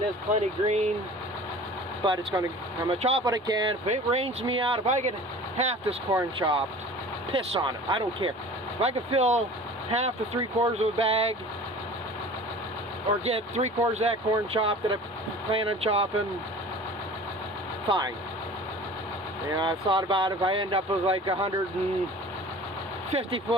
is plenty green. But I'm gonna chop what I can. If it rains me out, if I get half this corn chopped, piss on it. I don't care. If I can fill half to 3/4 of a bag, or get 3/4 of that corn chopped that I plan on chopping, fine. You know, I've thought about if I end up with like 150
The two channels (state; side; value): normal; both; correlation 0.42